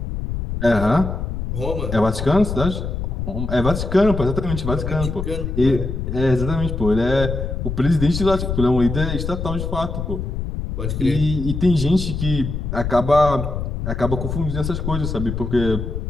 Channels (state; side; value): noise; left; rumble, 4 dB below the sound